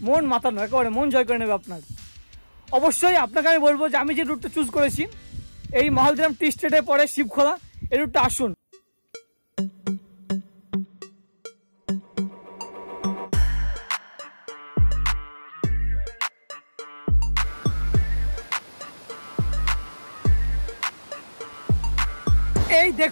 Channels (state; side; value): inverted; both; correlation -1.00